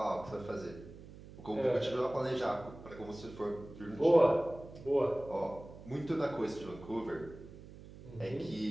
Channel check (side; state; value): right; noise; hum, 16 dB below the sound